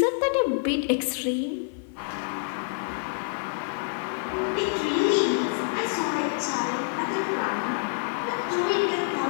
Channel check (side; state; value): right; silent; digital silence